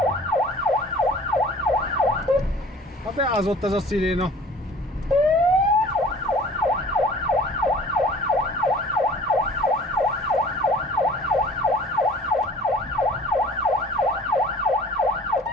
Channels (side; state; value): both; normal; correlation 0.47